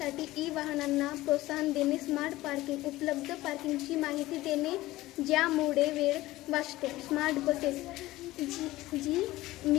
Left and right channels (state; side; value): quieter; right; 17.5 dB